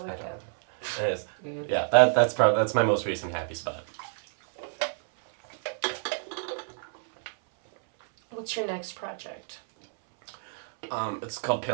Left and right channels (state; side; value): silent; left; 59 dB below the other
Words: like that. It is. Yeah, that's my most recent happy spot. What's your next project? It's called